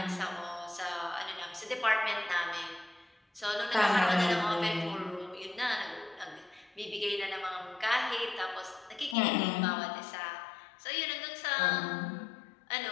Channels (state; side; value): drops out; right; at 9.2 s